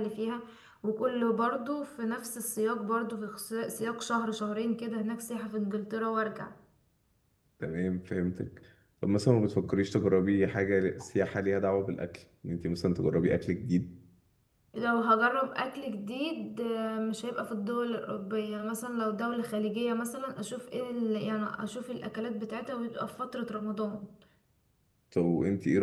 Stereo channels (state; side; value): identical; both; correlation 1.00